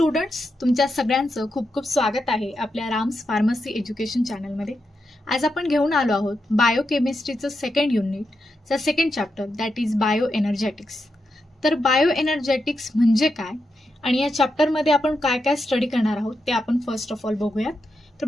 तुमच्या सगळ्यांचं खूप खूप स्वागत आहे आपल्या राम्स फार्मसी एज्युकेशन चॅनलमध्ये। आज आपण घेऊन आलो आहोत बायोकेमिस्ट्रीचं सेकंड युनिटचा second chapter that is bio energetics. तर बायो एनर्जेटिक्स म्हणजे काय आणि या चॅप्टरमध्ये आपण काय काय स्टडी करणार आहोत ते आपण फर्स्ट ऑफ ऑल बघूयात। तर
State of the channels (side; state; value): both; normal; correlation 0.86